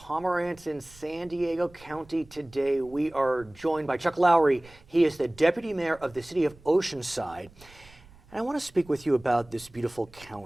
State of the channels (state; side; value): noise; right; rumble, 24 dB below the sound